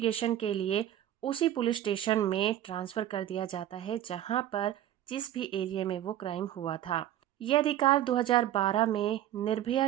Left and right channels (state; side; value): quieter; left; 12.2 dB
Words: के लिए उसी पुलिस स्टेशन में ट्रांसफर कर दिया जाता है जहां पर जिस भी एरिया में वो क्राइम हुआ था। यह अधिकार 2012 में निर्भया